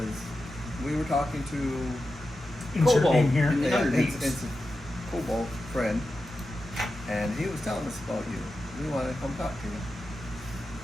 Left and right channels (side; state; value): both; normal; correlation 0.91